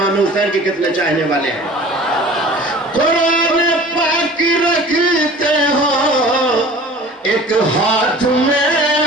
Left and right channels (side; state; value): both; normal; correlation 0.43